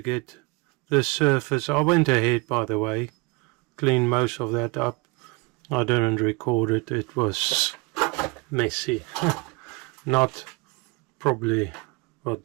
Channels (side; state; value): left; quieter; 27.3 dB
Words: get this surface. I went ahead, by the way, cleaned most of that up. I didn't record it, it was messy. Not probably, well,